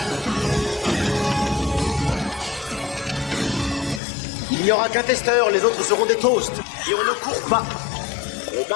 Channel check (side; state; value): right; drops out; at 4.0 s